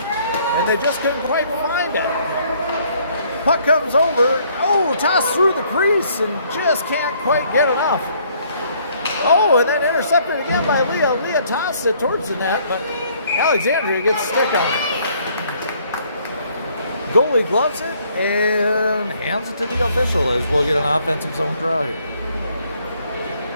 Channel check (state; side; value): inverted; both; correlation -0.64